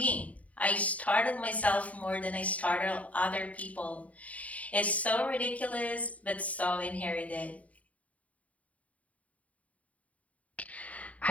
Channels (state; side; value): late; right; 0.069 ms